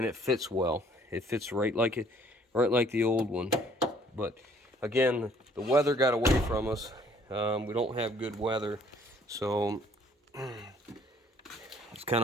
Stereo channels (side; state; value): both; normal; correlation 0.60